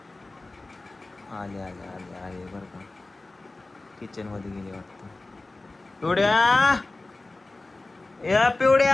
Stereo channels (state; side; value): quieter; right; 3.1 dB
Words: आले बरं का किचन मध्ये गेले वाटतं पिवड्या